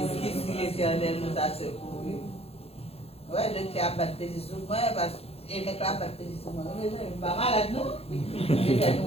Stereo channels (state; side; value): late; right; 0.29 ms